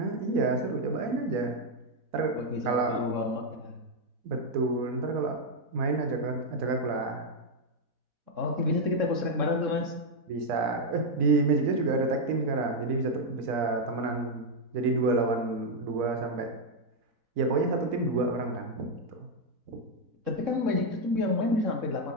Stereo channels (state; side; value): late; left; 4.0 ms